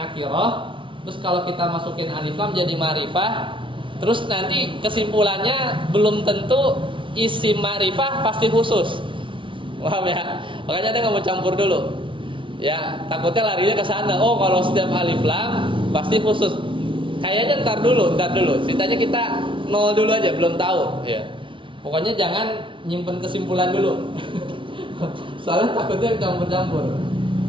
terus kalau kita masukin alif lam jadi ma'rifah, terus nanti kesimpulannya belum tentu isim ma'rifah pasti khusus. Paham ya? Makanya ada nggak mau campur dulu. Ya, takutnya larinya ke sana. Oh, kalau setiap alif lam pasti khusus. Kayaknya ntar dulu. Ceritanya kita nol dulu aja, belum tahu. Ya. Pokoknya jangan nyimpen kesimpulan dulu. Soalnya takutnya campur-campur.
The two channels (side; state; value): left; late; 0.25 ms